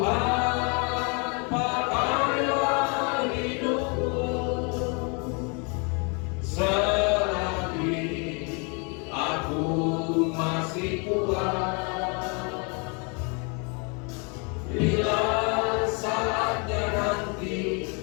pakailah hidupku selagi masih kuat. Bila saatnya nanti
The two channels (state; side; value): quieter; right; 34.2 dB